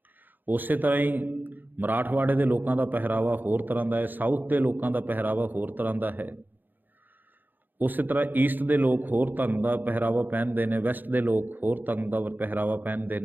ਉਸੇ ਤਰ੍ਹਾਂ ਹੀ ਮਰਾਠਵਾੜੇ ਦੇ ਲੋਕਾਂ ਦਾ ਪਹਿਰਾਵਾ ਹੋਰ ਤਰ੍ਹਾਂ ਦਾ ਹੈ, ਸਾਊਥ ਦੇ ਲੋਕਾਂ ਦਾ ਪਹਿਰਾਵਾ ਹੋਰ ਤਰ੍ਹਾਂ ਦਾ ਹੈ, ਉਸੇ ਤਰ੍ਹਾਂ ਈਸਟ ਦੇ ਲੋਕ ਹੋਰ ਢੰਗ ਦਾ ਪਹਿਰਾਵਾ ਪਹਿਨਦੇ ਨੇ, ਵੈਸਟ ਦੇ ਲੋਕ ਹੋਰ ਢੰਗ ਦਾ ਪਹਿਰਾਵਾ ਪਹਿਨਦੇ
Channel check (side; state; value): left; late; 0.088 ms